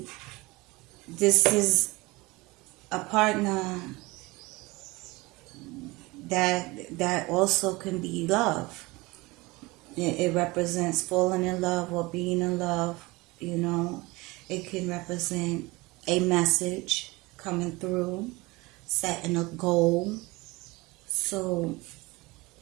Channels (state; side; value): quieter; left; 22.8 dB